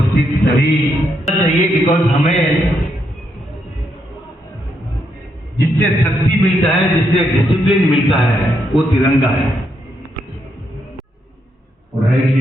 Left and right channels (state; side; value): normal; both; correlation 0.79